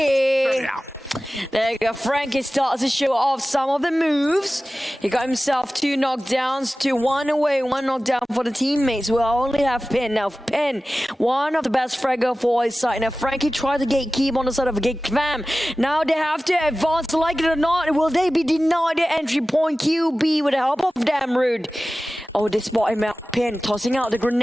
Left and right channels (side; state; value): both; normal; correlation 0.96